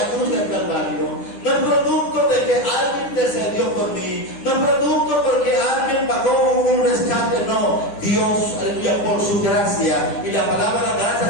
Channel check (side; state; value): right; late; 9.9 ms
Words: cruz del Calvario. No es producto de que alguien intercedió por mí, no es producto porque alguien pagó un rescate, no. Dios, aleluya, por su gracia. Y la palabra